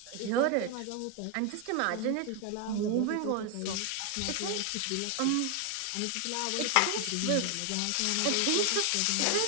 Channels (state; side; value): different; both; correlation 0.01